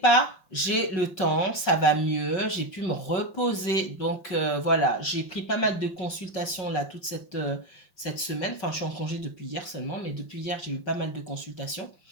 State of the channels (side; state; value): right; late; 5.4 ms